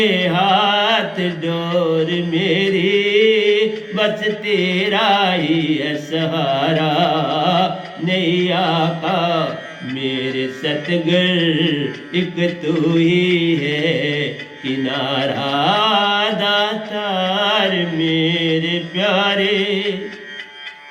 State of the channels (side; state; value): both; identical; correlation 1.00